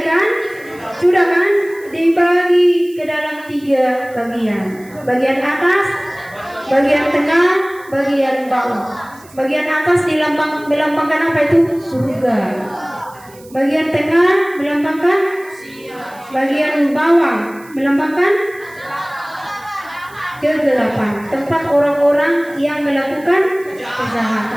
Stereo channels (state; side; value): noise; right; hiss, 25 dB below the sound